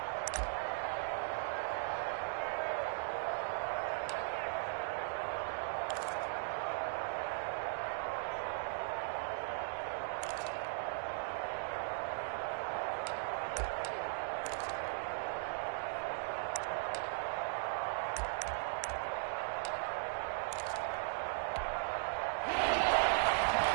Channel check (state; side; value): silent; left; digital silence